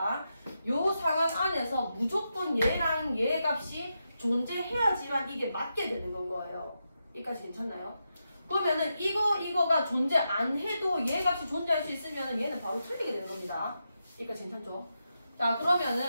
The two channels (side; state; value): both; inverted; correlation -0.86